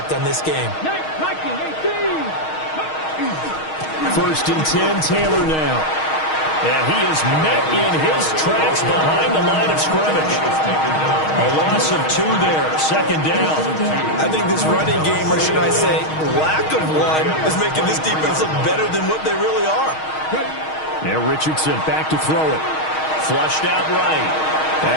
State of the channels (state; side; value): late; right; 6.4 ms